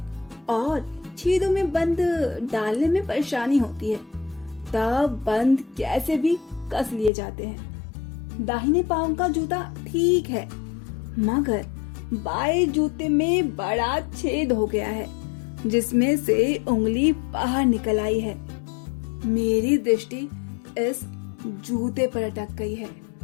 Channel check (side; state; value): right; drops out; at 7.1 s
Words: और छेदों में बंद डालने में परेशानी होती है। तब बंद कैसे भी कस लिए जाते हैं। दाहिने पांव का जूता ठीक है, मगर बाएं जूते में बड़ा छेद हो गया है, जिसमें से उंगली बाहर निकल आई है। मेरी दृष्टि इस जूते पर अटक गई है।